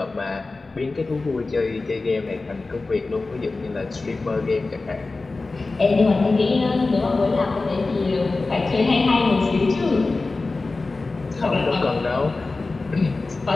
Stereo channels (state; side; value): quieter; right; 3.6 dB